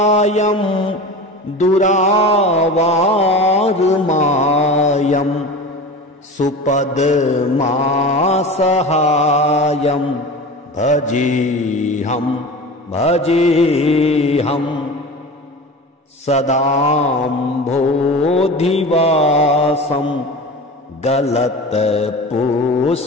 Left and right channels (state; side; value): normal; both; correlation 0.33